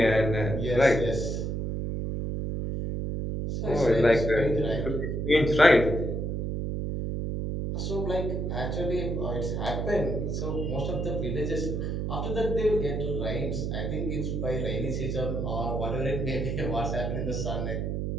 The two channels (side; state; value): right; noise; hum, 1 dB below the sound